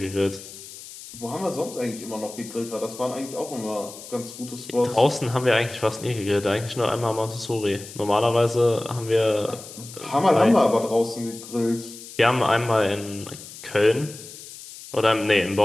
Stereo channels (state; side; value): noise; left; hiss, 15 dB below the sound